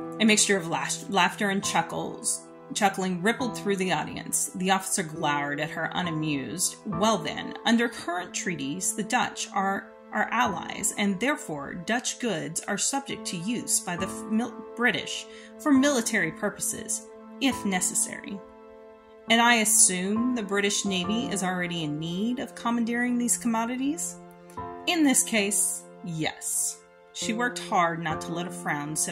A mixture of laughter and chuckling rippled through the audience. The officer glowered at her unamused. Well then, under current treaties, the Dutch are our allies, and therefore Dutch goods are subject to use by the British for military purposes, if necessary. And I assume the British Navy is already in need of commandeering these commodities? In this case, yes. She worked hard not to let a frown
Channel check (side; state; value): both; identical; correlation 1.00